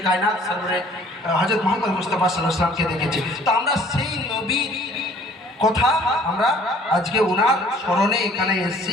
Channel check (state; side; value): normal; both; correlation 0.55